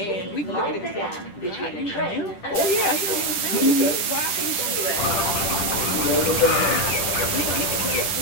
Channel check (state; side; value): late; right; 10 ms